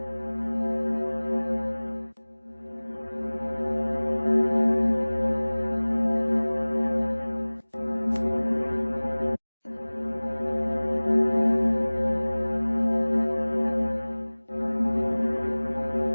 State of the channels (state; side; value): inverted; both; correlation -1.00